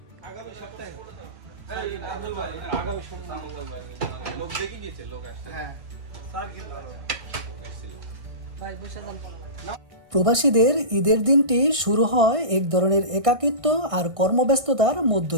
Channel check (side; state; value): left; late; 1.6 ms